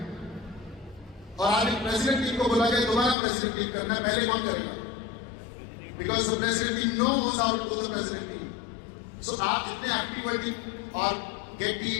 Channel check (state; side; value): drops out; right; at 3.2 s